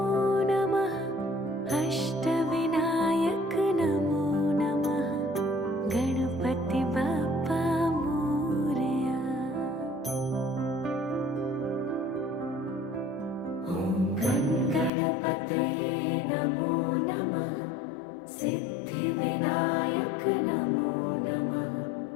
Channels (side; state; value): right; drops out; at 14.9 s